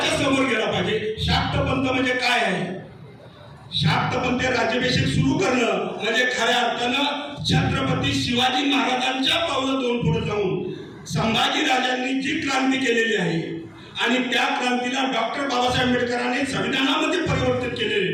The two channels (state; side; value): identical; both; correlation 1.00